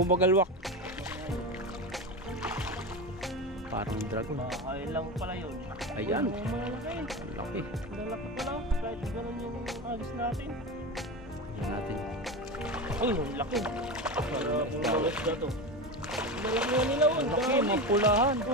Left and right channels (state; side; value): normal; both; correlation 0.22